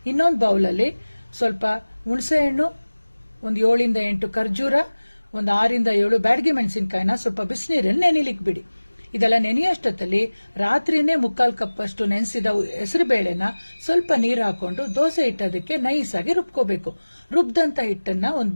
ಇನ್ನೊಂದು ಬೌಲಲ್ಲಿ ಸ್ವಲ್ಪ ಹುಣಸೆ ಹಣ್ಣು, ಒಂದು 7 ಇಂದ 8 ಖರ್ಜೂರ, ಒಂದು 6 ಇಂದ 7 ಬ್ಯಾಡಗಿ ಮೆಣಸಿನಕಾಯಿನ ಸ್ವಲ್ಪ ಬಿಸಿನೀರಲ್ಲಿ ನೆನಿಲಿಕ್ಕೆ ಬಿಡಿ. ಇದೆಲ್ಲ ನೆನೆಯಷ್ಟೊತ್ತಲ್ಲಿ ರಾತ್ರಿನೇ 3/4 ಕಪ್ ಅಷ್ಟು ನೆನೆಸಿದ ಹೆಸರು ಬೇಳೆನ ಸ್ವಲ್ಪ ನೀರು ಹಾಕೊಂಡು ದೋಸೆ ಹಿಟ್ಟದಕ್ಕೆ ನೈಸ್ ಆಗಿ ರುಬ್ಕೋಬೇಕು. ರುಬ್ದಂತ ಹಿಟ್ಟನ್ನ ಒಂದು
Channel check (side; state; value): both; inverted; correlation -1.00